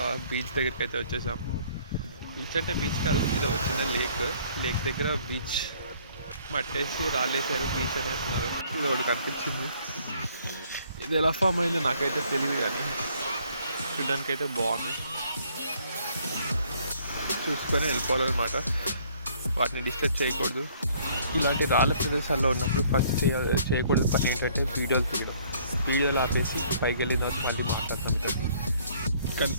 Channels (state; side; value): inverted; both; correlation -0.61